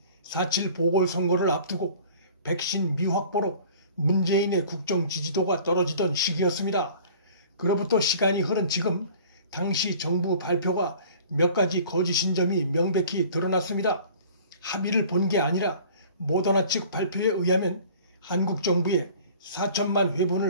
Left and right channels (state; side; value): inverted; both; correlation -0.47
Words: 4.7 보궐선거를 앞두고 백신 미확보로 문재인의 국정 지지도가 떨어지던 시기였습니다. 그로부터 시간이 흐른 지금 당시 정부 발표가 몇 가지 거짓인 점이 명백히 드러났습니다. 합의를 본 게 아니라 모더나 측 발표에 의하면 한국 정부에 4천만